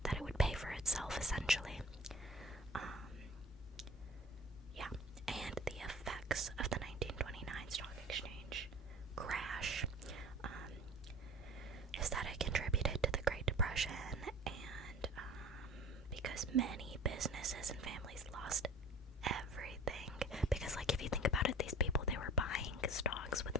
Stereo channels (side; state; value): both; normal; correlation 0.42